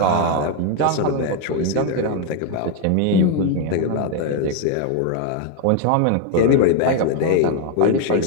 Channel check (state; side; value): different; both; correlation 0.01